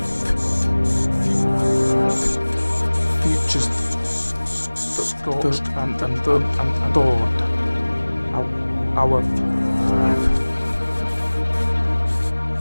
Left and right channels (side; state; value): both; inverted; correlation -1.00